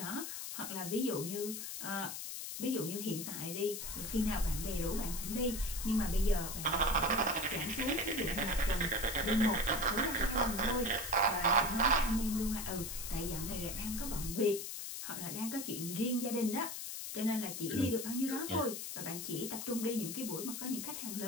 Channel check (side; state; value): left; noise; hiss, 6 dB below the sound